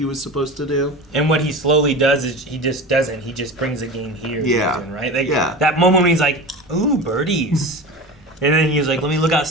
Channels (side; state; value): both; normal; correlation 0.30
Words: was supposed to do. And what he slowly does is he just doesn't. He just brings the game here. Yeah. Right? That moment when he's like, ooh, birdies. And then he was like, let me look